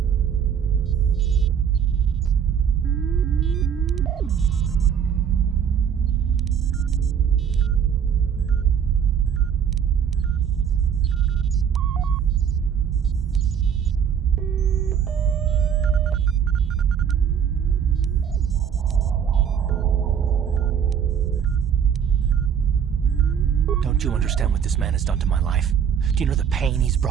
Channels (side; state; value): left; quieter; 7.9 dB